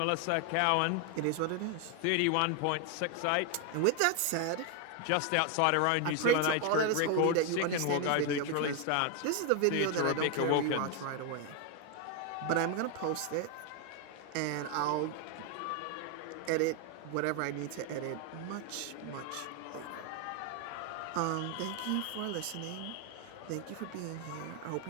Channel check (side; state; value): both; different; correlation 0.01